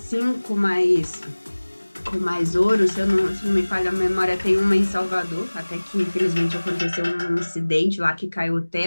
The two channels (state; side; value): inverted; both; correlation -1.00